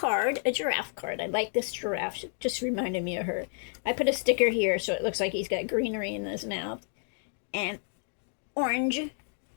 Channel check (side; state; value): right; silent; 58 dB below the other